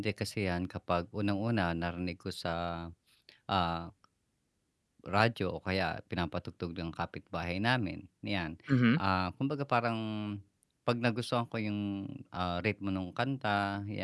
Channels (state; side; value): identical; both; correlation 1.00